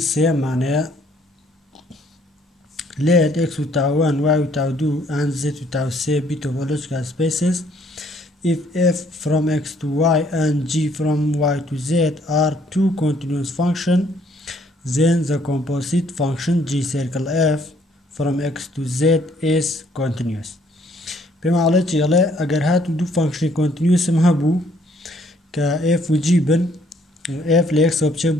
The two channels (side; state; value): both; normal; correlation 0.65